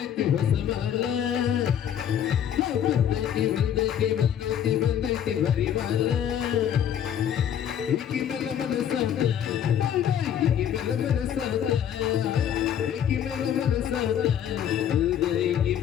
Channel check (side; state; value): right; quieter; 9.5 dB